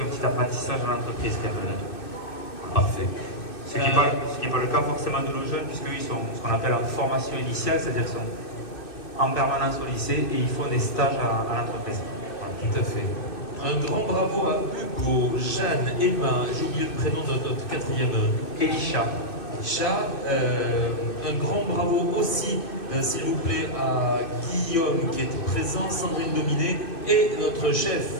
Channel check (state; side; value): late; right; 2.6 ms